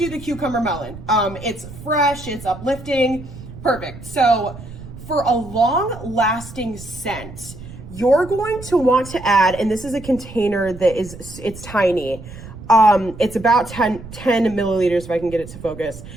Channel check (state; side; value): noise; right; rumble, 14 dB below the sound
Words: the cucumber melon. It's fresh, it's uplifting, perfect. So for a long-lasting scent, you're going to want to add, and this is a container that it's tiny. It's about 10 milliliters if I can get it to focus.